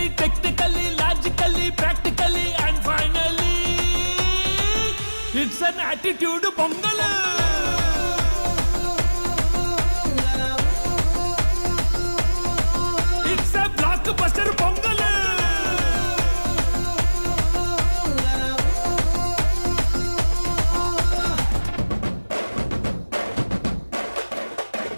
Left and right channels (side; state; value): both; inverted; correlation -1.00